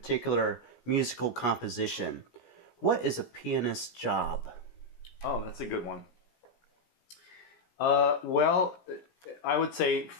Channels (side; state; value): right; late; 17 ms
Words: musical composition, what is a pianist's job? Oh, that's a good one. Well, I would say